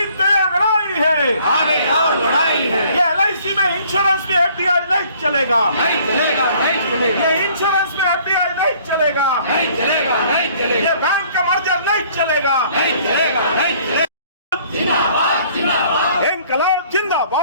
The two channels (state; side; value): inverted; both; correlation -0.58